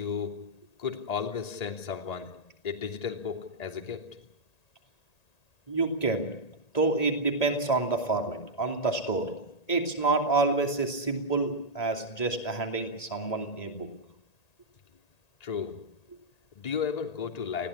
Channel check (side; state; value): right; late; 1.8 ms